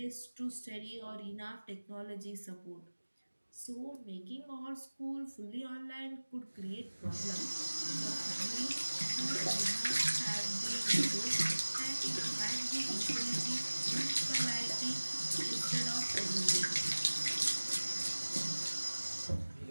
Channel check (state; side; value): inverted; both; correlation -1.00